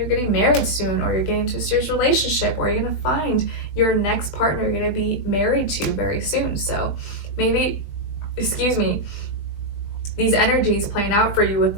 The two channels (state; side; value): late; right; 20 ms